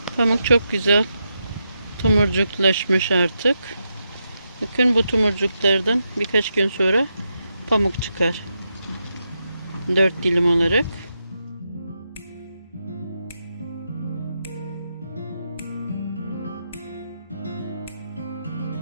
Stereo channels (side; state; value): both; inverted; correlation -0.85